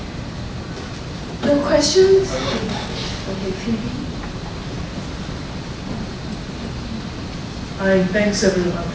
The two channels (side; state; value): both; identical; correlation 1.00